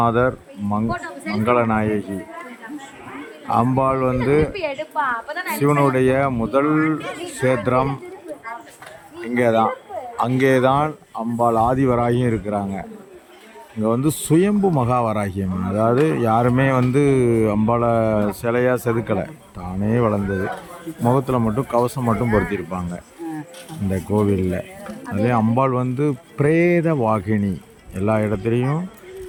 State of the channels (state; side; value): identical; both; correlation 1.00